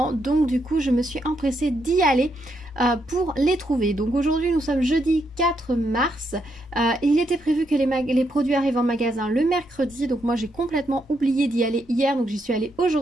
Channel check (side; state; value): both; normal; correlation 0.79